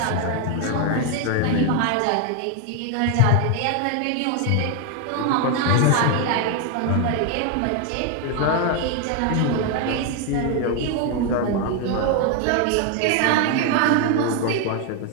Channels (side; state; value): both; different; correlation 0.01